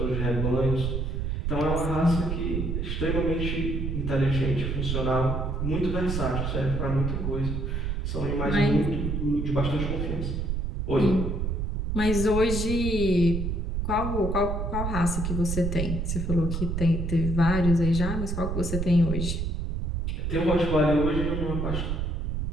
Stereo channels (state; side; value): noise; right; rumble, 1 dB below the sound